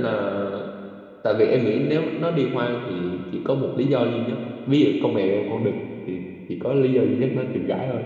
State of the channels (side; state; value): both; identical; correlation 1.00